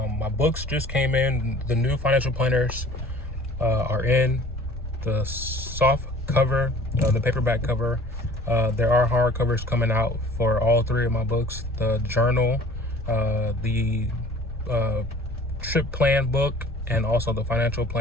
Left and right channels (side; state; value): both; normal; correlation 0.48